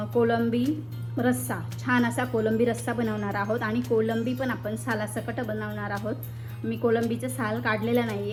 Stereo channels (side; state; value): both; identical; correlation 1.00